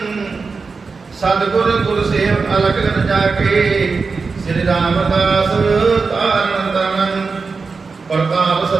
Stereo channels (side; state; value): left; quieter; 4.6 dB